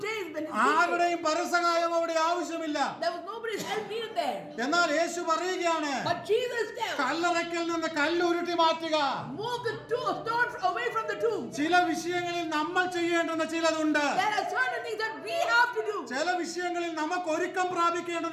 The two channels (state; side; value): identical; both; correlation 1.00